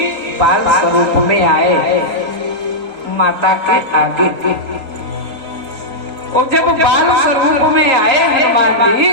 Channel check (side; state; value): left; late; 3.8 ms